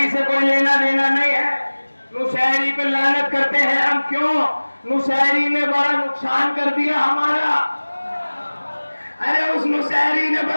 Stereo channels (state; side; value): inverted; both; correlation -1.00